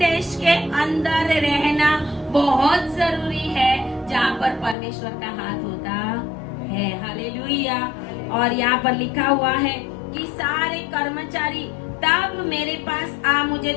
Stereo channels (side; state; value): right; drops out; at 4.8 s